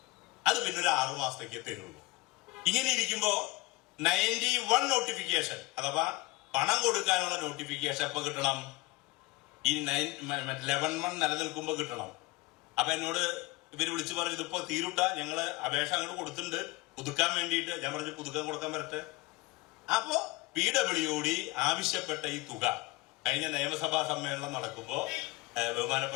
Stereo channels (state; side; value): quieter; right; 22.4 dB